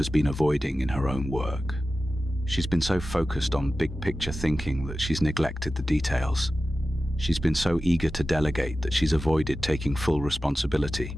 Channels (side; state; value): both; normal; correlation 0.94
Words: been avoiding in her own work. She's been so focused on big-picture thinking that she's neglected the details. She's been so eager to delegate that she's avoided taking full responsibility.